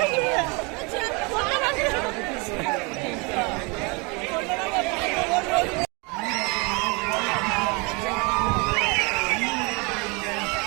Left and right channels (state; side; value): quieter; left; 29.4 dB